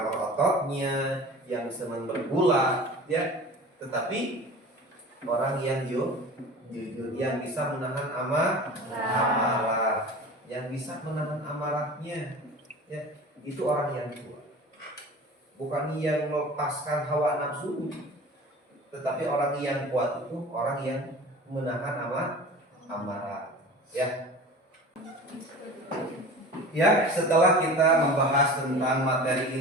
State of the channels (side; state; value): both; normal; correlation 0.38